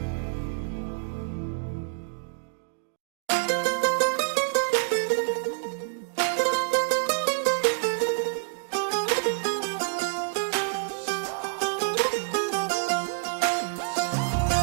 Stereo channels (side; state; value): left; silent; digital silence